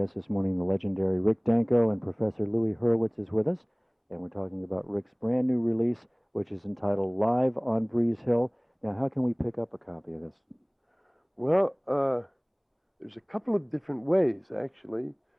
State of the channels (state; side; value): identical; both; correlation 1.00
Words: this morning, the legendary Rick Danko, and Professor Louie Hurwitz is with us. And we're talking about Rick's brand new release, which is entitled Live on Breeze Hill. Now, how can we pick up a copy of this? Well, there's a couple of different ways, actually.